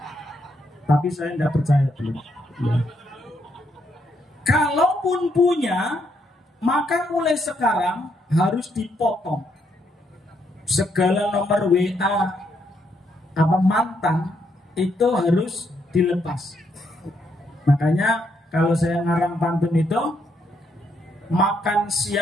Tapi saya enggak percaya belum. Ya. Kalaupun punya, maka mulai sekarang harus dipotong segala nomor WA apa mantan itu harus dilepas. Makanya kalau saya ngarang pantun itu, makan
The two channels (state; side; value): normal; both; correlation 0.75